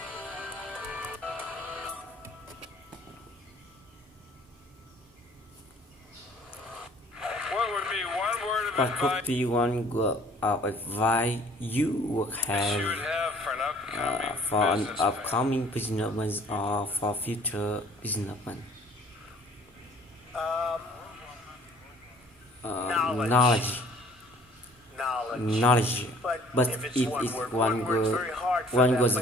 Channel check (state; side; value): normal; both; correlation 0.54